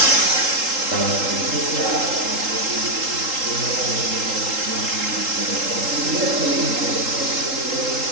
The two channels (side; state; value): left; late; 3.8 ms